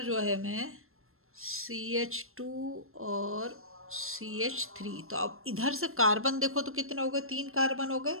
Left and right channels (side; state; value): left; late; 0.62 ms